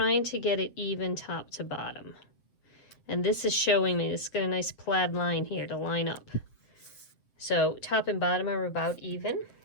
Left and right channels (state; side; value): late; right; 7.7 ms